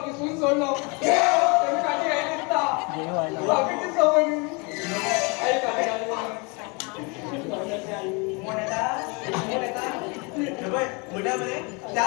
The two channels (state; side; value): quieter; right; 30.6 dB